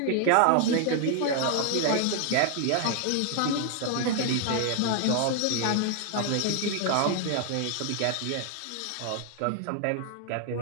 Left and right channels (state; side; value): different; both; correlation 0.00